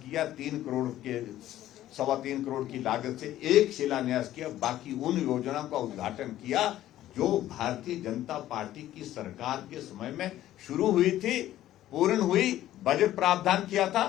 3 करोड़ के 3.25 करोड़ की लागत से एक शिलान्यास किया। बाकी उन योजनाओं का उद्घाटन किया जो भारतीय जनता पार्टी की सरकार के समय में शुरू हुई थी, पूर्ण हुई, बजट प्रावधान किया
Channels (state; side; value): quieter; right; 13.5 dB